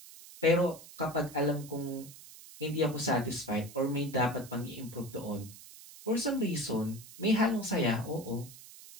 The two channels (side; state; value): right; noise; hiss, 17 dB below the sound